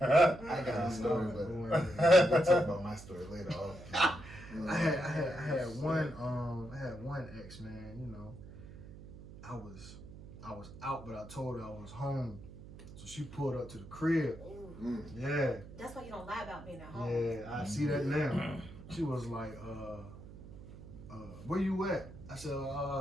got a story, but we'll talk about my story later. I had one ex, man. You know, I was out, but I told her I was home, so she pulled up to the crib. Ooh. Yeah. That's why you don't lie about being at home. Yeah, I see that now. She was like, where you at? I said,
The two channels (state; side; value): noise; right; hum, 15 dB below the sound